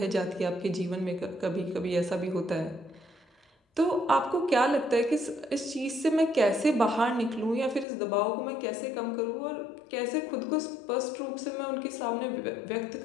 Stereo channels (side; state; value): right; drops out; at 7.9 s